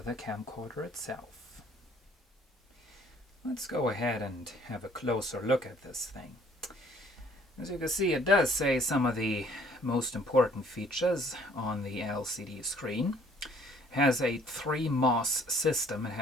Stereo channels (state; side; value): normal; both; correlation 0.59